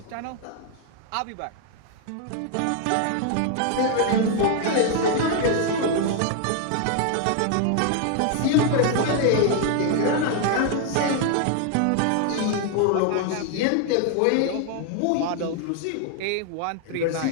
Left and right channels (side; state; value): both; different; correlation 0.00